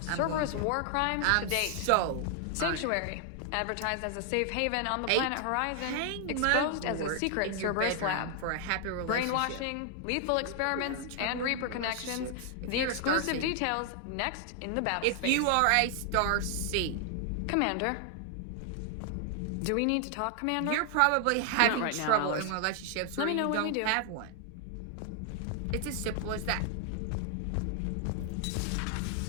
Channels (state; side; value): different; both; correlation 0.00